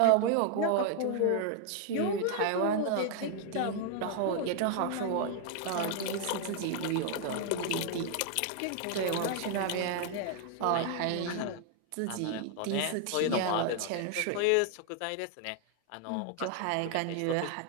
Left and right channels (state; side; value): different; both; correlation 0.00